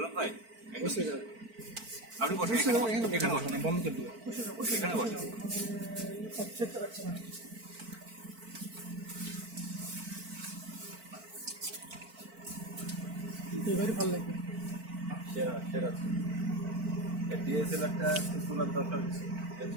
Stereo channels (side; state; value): left; late; 4.5 ms